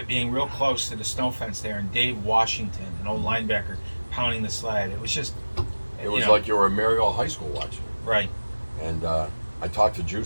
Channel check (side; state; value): both; inverted; correlation -1.00